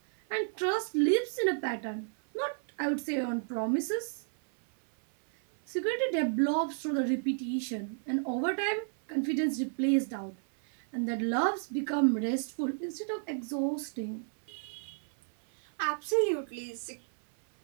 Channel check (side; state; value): left; silent; 57 dB below the other